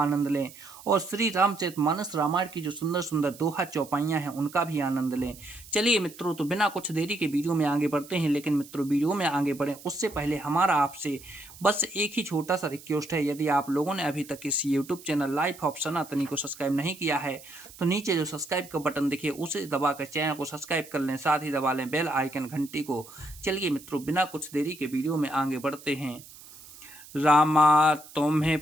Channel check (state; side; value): noise; right; hiss, 19 dB below the sound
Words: लें और श्री रामचरितमानस रामायण की जो सुंदर सुंदर दोहा चौपाइयाँ हैं उनका भी आनंद लें। चलिए मित्रों, तो बिना कुछ देरी के वीडियो में आगे बढ़ते हैं। लेकिन मित्रों, वीडियो में आगे बढ़ें उससे पहले हमारा आपसे बस एक ही छोटा सा रिक्वेस्ट है। यदि आप लोगों ने अभी तक इस यूट्यूब चैनल लाइफ ऑफ सनातनी को सब्सक्राइब नहीं किया है तो नीचे जो सब्सक्राइब का बटन दिखे उसे दबाकर चैनल को सब्सक्राइब कर लें, साथ ही दबा लें बेल आइकन घंटी को। चलिए मित्रों, बिना कुछ देरी के वीडियो में आगे बढ़ते हैं। रामा तुम्हें